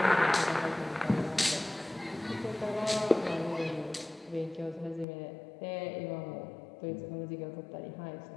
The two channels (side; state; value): right; drops out; at 5.1 s